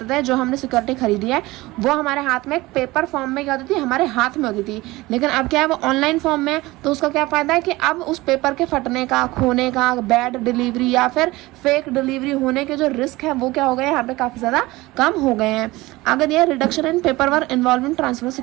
थे, जो हमने सिक्योरिटी खरीदी है वो हमारे हाथ में एक पेपर फॉर्म में क्या होती थी, हमारे हाथ में होती थी, लेकिन अब क्या है, वो ऑनलाइन फॉर्म में है। तो उसका क्या फायदा है कि अब उस पेपर के फटने का, खोने का, बैड डिलीवरी या फिर फेक डिलीवरी होने के जो रिस्क है वो क्या हो गए, यहाँ पे काफ़ी ज़्यादा कम हो गए हैं। आगे दिया reduction in paper work involving transfer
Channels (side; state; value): left; quieter; 20.0 dB